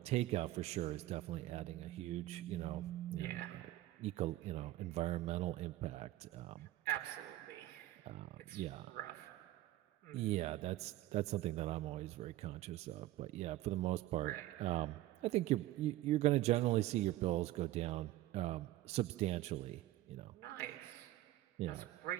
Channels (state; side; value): quieter; left; 15.7 dB